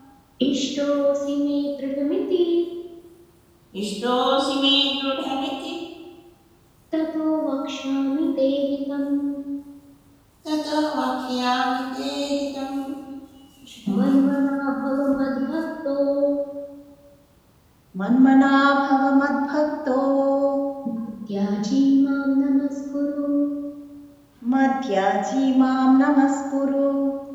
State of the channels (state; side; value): identical; both; correlation 1.00